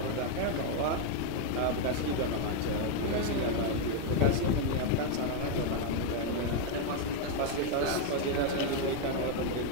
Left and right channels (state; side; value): different; both; correlation 0.01